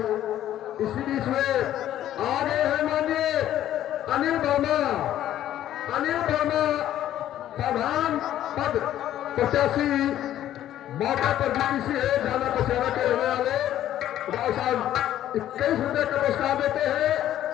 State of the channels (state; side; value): quieter; right; 12.2 dB